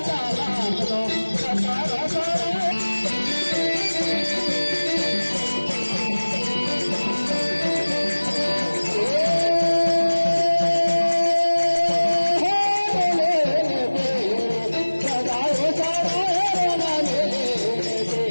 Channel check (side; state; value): both; inverted; correlation -1.00